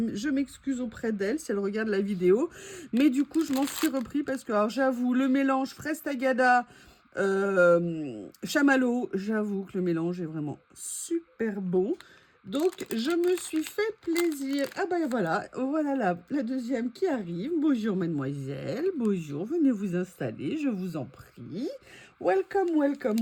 m'excuse auprès d'elle si elle regarde la vidéo. Mais du coup, je m'en suis repris parce que, alors, j'avoue, le mélange fraise tagada, chamallow, j'avoue que le mélange est vraiment super bon. Donc, je me suis fait plaisir. Ah ben voilà la deuxième qui arrive. Bonjour mademoiselle, bonjour, venez vous installer, je vous en prie. Welcome, welcome,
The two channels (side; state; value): both; identical; correlation 1.00